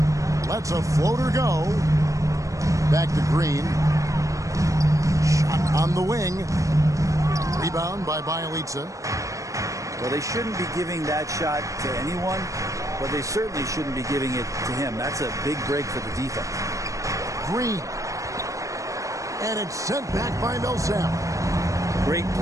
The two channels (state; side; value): late; left; 0.16 ms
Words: Lets a floater go. Back to Green. Shot on the wing. Rebound by Bielitsa. Well, they shouldn't be giving that shot to anyone, but they certainly shouldn't be giving it to him. That's a big break for the defense. Green. And it's sent back by Millsap. Great